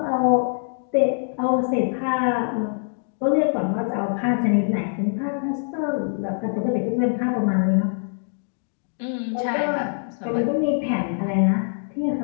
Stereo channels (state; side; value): silent; right; digital silence